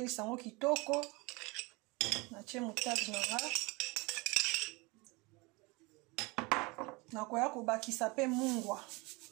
yango kitoko. Na tie moutarde nanga. Na koya kobakisa pe mungwa.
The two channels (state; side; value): quieter; left; 25.9 dB